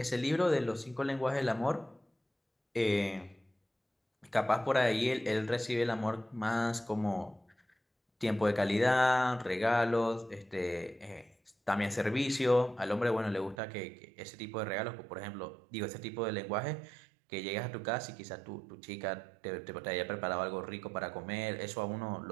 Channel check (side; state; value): left; drops out; at 13.6 s